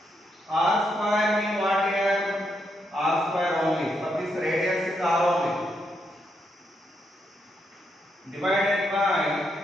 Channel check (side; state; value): both; normal; correlation 0.80